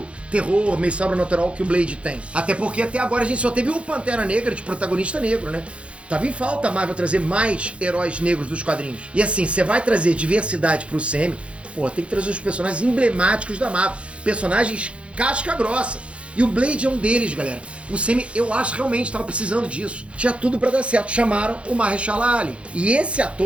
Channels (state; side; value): late; left; 0.060 ms